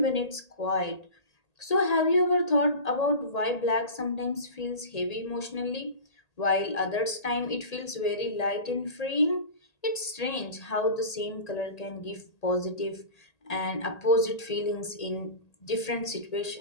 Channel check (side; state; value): right; late; 1.8 ms